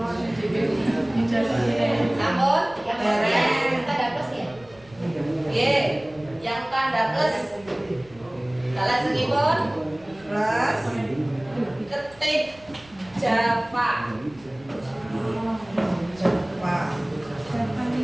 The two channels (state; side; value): noise; right; rumble, 25 dB below the sound